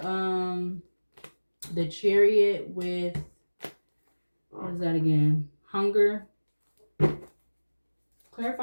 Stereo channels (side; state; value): both; inverted; correlation -1.00